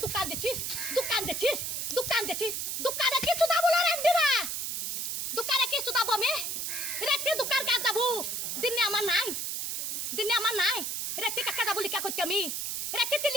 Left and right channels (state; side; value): noise; right; hiss, 2 dB below the sound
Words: দোকান দেখছিস, দোকান দেখছিস, দোকান দেখছিস, দোকানে কিছু দাবো না রান্দিরা, দোকানে কিছু দাবো আমি রেখে দোকান কাজ যাবো, দিনে আমার নাই, দিনে আমার নাই, রেখে কাকা যাবো লিখা করছি আমি, রেখে